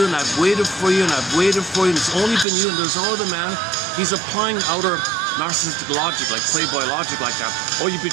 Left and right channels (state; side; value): drops out; left; at 2.5 s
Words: and I've waited for you, and I've waited for you, and it's only been you, and there's no other man. He's applying outer narcissistic logic, like Playboy logic like that. Oh, you